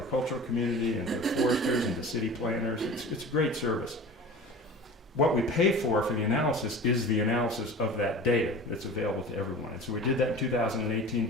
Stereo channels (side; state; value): both; normal; correlation 0.37